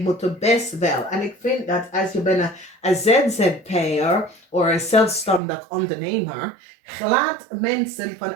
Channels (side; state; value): left; drops out; at 5.4 s